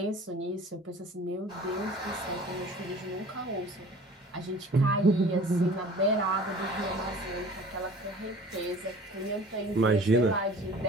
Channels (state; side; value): normal; both; correlation 0.45